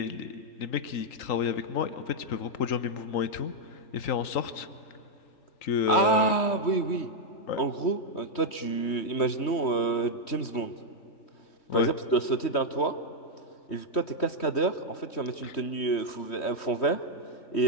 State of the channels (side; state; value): right; late; 3.1 ms